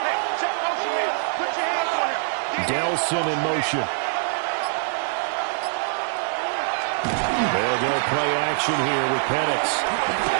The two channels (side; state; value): left; silent; digital silence